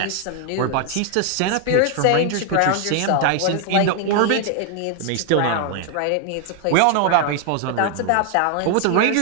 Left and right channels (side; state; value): both; different; correlation 0.00